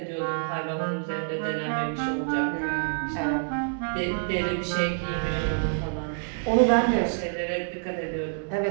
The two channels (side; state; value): left; silent; digital silence